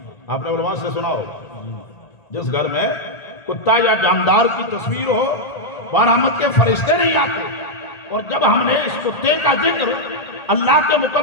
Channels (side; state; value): right; late; 1.8 ms